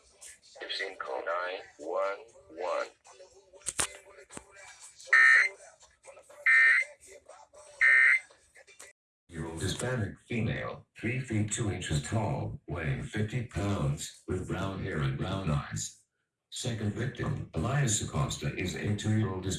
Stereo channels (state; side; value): identical; both; correlation 1.00